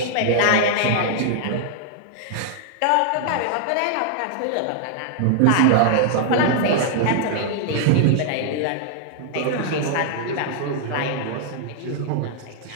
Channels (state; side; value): different; both; correlation -0.01